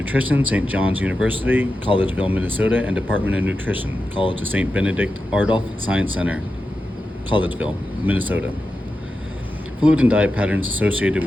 St. John's University, Collegeville, Minnesota, and Department of Nutrition, College of St. Benedict Ardolph Science Center, Collegeville, Minnesota. Fluid and diet patterns associated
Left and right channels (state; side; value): normal; both; correlation 0.91